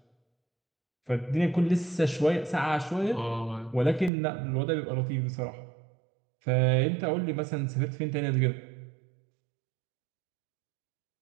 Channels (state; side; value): drops out; left; at 4.1 s